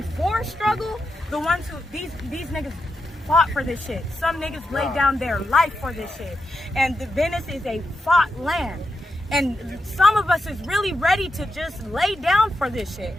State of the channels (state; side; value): normal; both; correlation 0.87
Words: before struggle, the ones who, these niggas fought for this shit. Some niggas laid down their life for this shit. And the Venice is a fought land. And some of us is really ready to just lay down for this shit